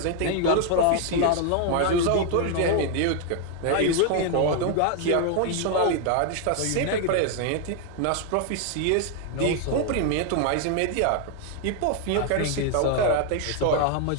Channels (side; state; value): both; different; correlation 0.00